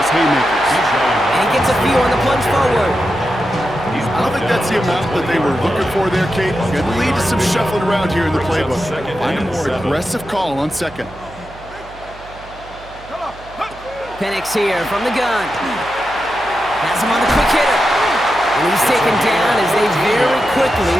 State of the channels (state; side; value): noise; right; hum, 20 dB below the sound